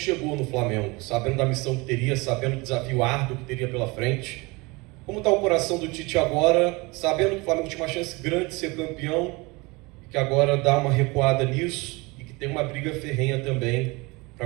no Flamengo, sabendo da missão que teria, sabendo do desafio árduo que teria pela frente. Como está o coração do Tite agora, sabendo que o Flamengo tinha uma chance grande de ser campeão, e que agora dá uma recuada nisso, e que tem uma briga ferrenha também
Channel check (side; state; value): left; quieter; 25.2 dB